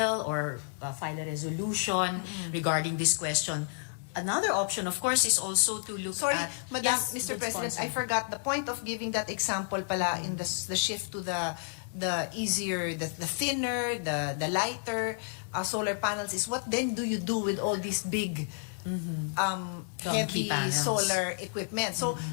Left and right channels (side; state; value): right; silent; digital silence